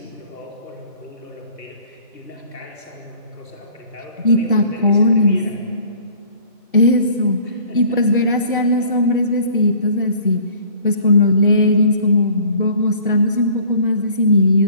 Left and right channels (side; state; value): both; inverted; correlation -0.52